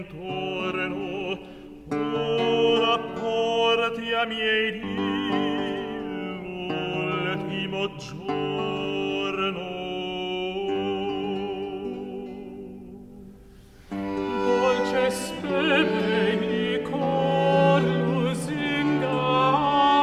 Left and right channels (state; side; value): identical; both; correlation 1.00